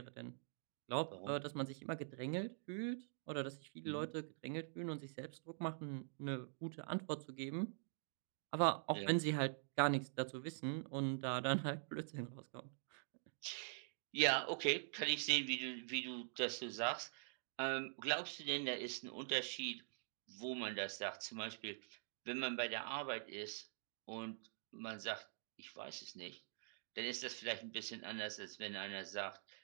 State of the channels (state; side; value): silent; left; digital silence